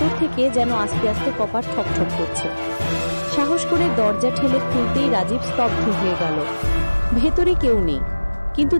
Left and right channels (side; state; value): both; inverted; correlation -1.00